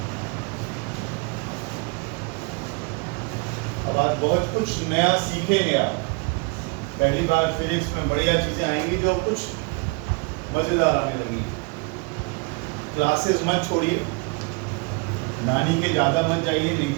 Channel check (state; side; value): quieter; left; 30.0 dB